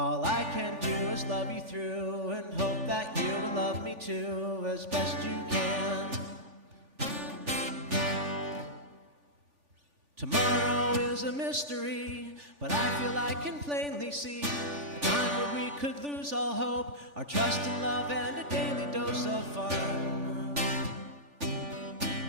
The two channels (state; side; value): late; left; 3.4 ms